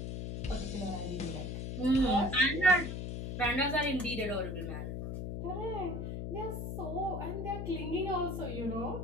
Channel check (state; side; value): noise; left; hum, 4 dB below the sound